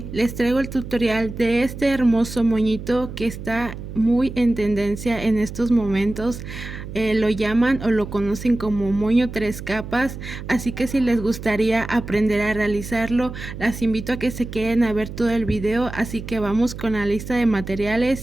les traigo el tutorial de este hermoso moñito que está muy en tendencia en estos momentos. Lo llaman o lo conocen como moño 3 capas, así que si les gustaría aprender a realizarlo, las invito a que se queden a ver todo el video, así que vamos con la lista de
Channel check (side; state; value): right; noise; hum, 10 dB below the sound